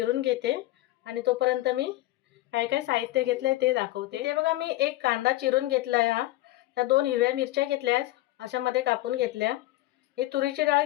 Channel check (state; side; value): quieter; right; 17.2 dB